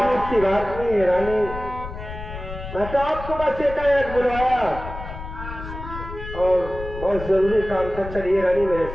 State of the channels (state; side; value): noise; left; rumble, 10 dB below the sound